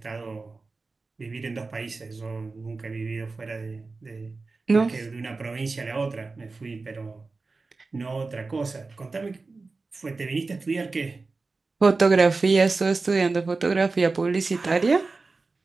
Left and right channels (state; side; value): quieter; left; 3.9 dB